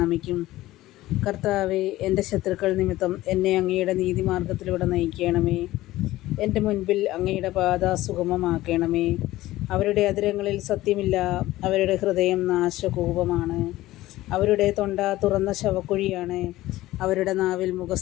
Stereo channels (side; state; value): right; quieter; 16.5 dB